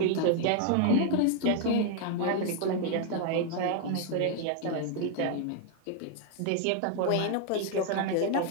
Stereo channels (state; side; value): different; both; correlation 0.00